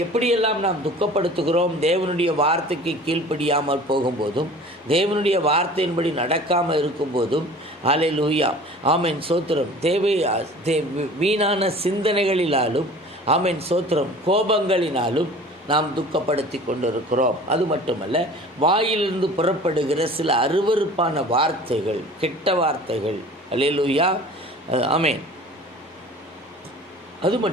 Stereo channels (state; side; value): normal; both; correlation 0.43